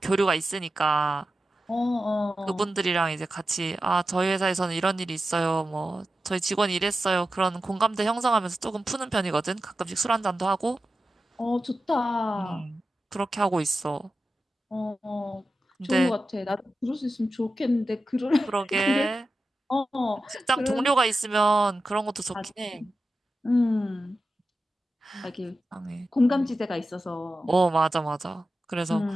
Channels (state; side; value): normal; both; correlation 0.92